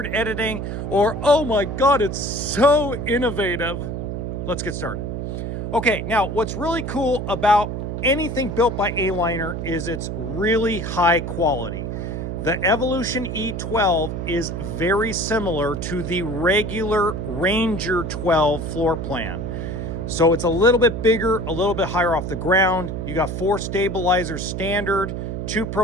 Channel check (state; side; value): noise; right; hum, 4 dB below the sound